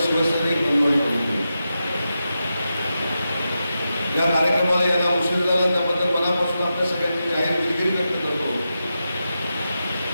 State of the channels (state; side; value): inverted; both; correlation -0.89